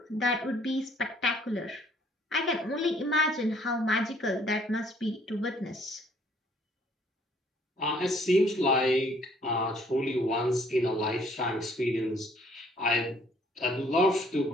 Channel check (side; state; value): both; normal; correlation 0.62